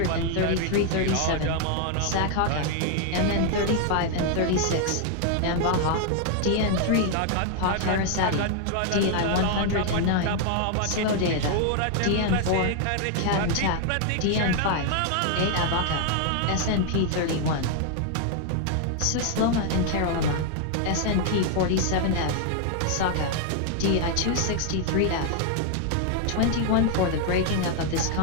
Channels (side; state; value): both; different; correlation 0.00